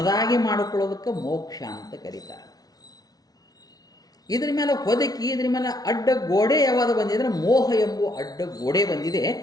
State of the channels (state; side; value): late; right; 0.19 ms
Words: ಮಾಡಿಕೊಳ್ಳೋದಕ್ಕೆ ಮೋಕ್ಷ ಅಂತ ಕರೀತಾರೆ. ಇದ್ರ ಮೇಲೆ ಹೊದಕಿ, ಇದ್ರ ಮೇಲೆ ಅಡ್ಡ ಗೋಡೆ ಯಾವಾಗ ಬಂದಿದ್ರೆ ಮೋಹ ಎಂಬುವ ಅಡ್ಡ ಗೋಡೆ ಬಂದಿದೆ.